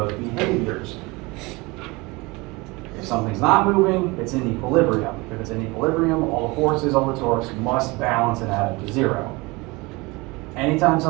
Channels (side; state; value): left; quieter; 24.4 dB